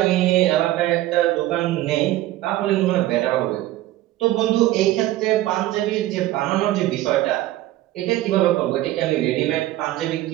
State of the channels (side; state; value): left; quieter; 15.4 dB